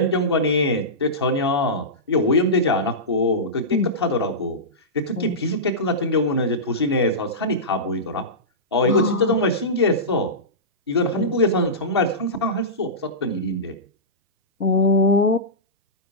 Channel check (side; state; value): both; normal; correlation -0.17